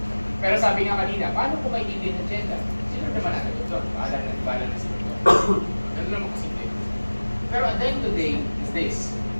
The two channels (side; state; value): both; inverted; correlation -1.00